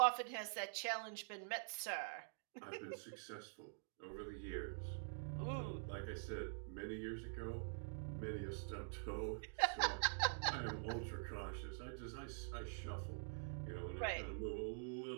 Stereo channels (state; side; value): silent; left; digital silence